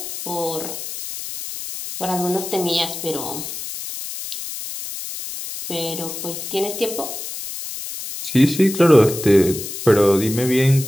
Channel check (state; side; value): noise; left; hiss, 8 dB below the sound